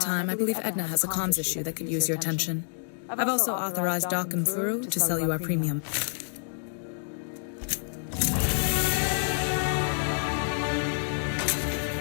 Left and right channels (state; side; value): silent; right; digital silence